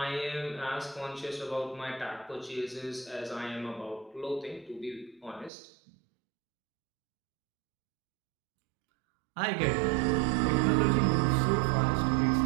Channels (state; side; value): drops out; left; at 5.5 s